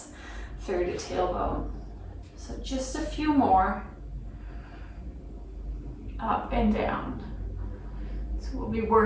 through the tailbone. So just a few more. Up and down. So we'll be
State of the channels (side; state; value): both; identical; correlation 1.00